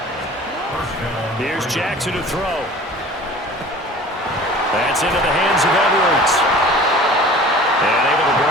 Here's Jackson to throw. That's into the hands of Edwards. And able to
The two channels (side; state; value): both; normal; correlation 0.43